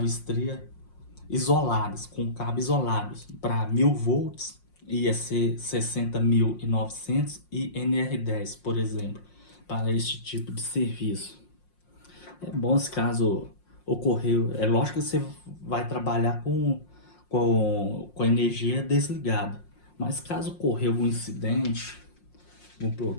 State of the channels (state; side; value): late; right; 5.6 ms